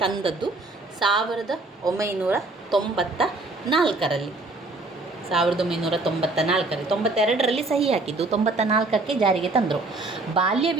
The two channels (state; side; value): quieter; left; 3.3 dB